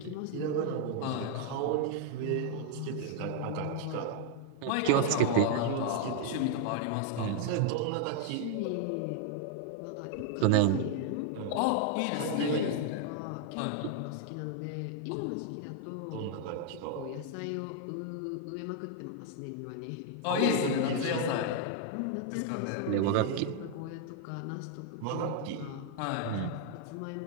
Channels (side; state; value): both; different; correlation 0.00